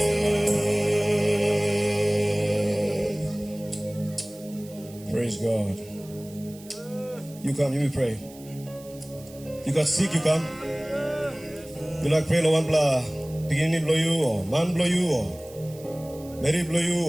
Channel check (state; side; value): noise; right; hiss, 21 dB below the sound